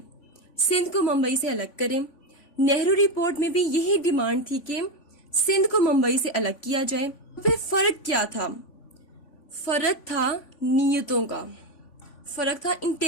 سندھ کو ممبئی سے الگ کریں. نہرو رپورٹ میں بھی یہی ڈیمانڈ تھی کہ سندھ کو ممبئی سے الگ کیا جائے. پھر فرق کیا تھا؟ فرق تھا نیتوں کا, فرق تھا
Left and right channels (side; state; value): right; late; 3.5 ms